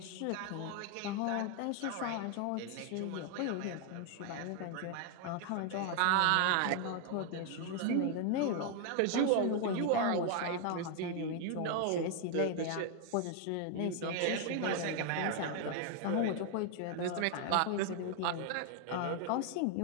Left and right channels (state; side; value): different; both; correlation 0.00